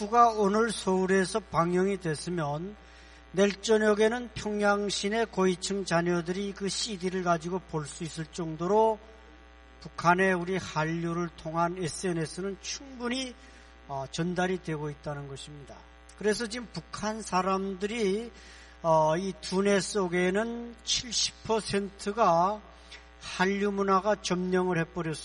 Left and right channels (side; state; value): both; identical; correlation 1.00